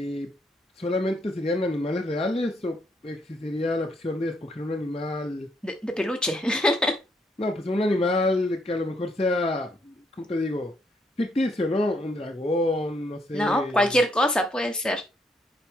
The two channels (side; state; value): both; normal; correlation 0.73